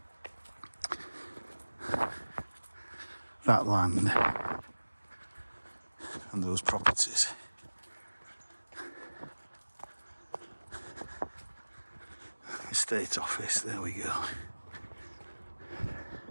that land and those properties. Estate office, there we go.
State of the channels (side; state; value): both; inverted; correlation -1.00